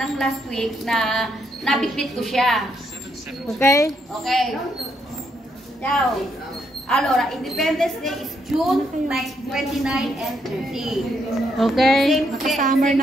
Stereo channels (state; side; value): normal; both; correlation 0.76